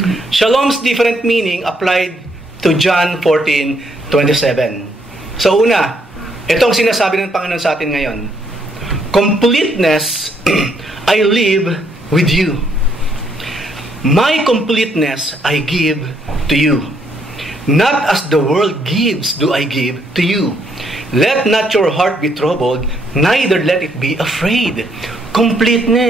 Shalom's different meaning applied to John 14:27. So, una, itong sinasabi ng Panginoon sa atin ngayon. Completeness, I live with you. My completeness I give to you. Not as the world gives do I give to you. Let not your heart be troubled, neither let it be afraid.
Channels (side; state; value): both; normal; correlation 0.72